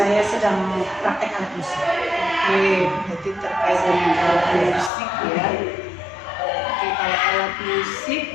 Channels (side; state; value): right; drops out; at 4.9 s